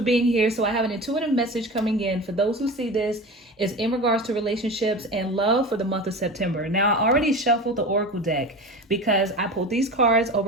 here. So I have an intuitive message coming in for those who see this is in regards to relationships and love for the month of September. Now I already shuffled the Oracle deck because I pulled these cards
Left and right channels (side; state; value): both; normal; correlation 0.31